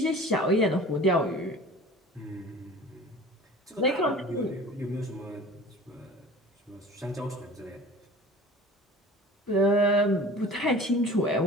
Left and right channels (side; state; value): both; normal; correlation 0.42